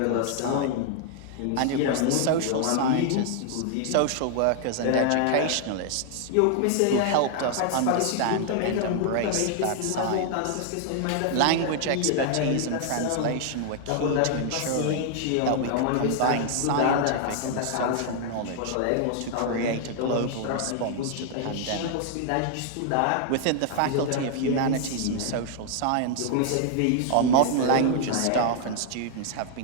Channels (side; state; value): both; different; correlation 0.00